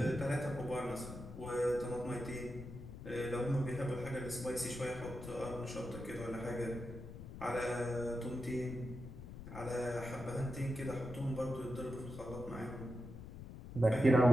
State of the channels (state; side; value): noise; left; rumble, 12 dB below the sound